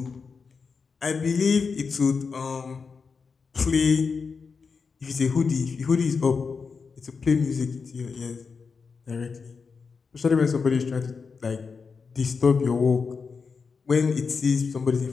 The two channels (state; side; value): quieter; right; 5.2 dB